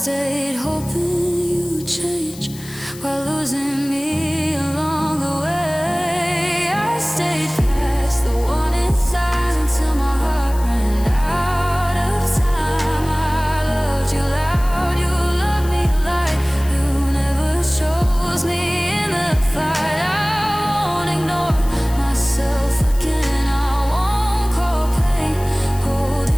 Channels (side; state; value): left; noise; hiss, 17 dB below the sound